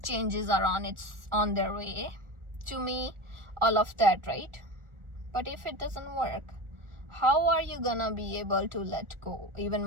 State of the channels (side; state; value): left; late; 1.4 ms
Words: changes are on their way to me, all of that, right? But if it doesn't work, how are you gonna be able to let go, even